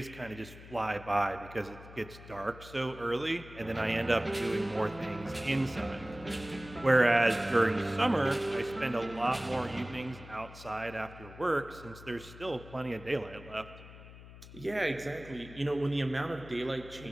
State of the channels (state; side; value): noise; left; hum, 17 dB below the sound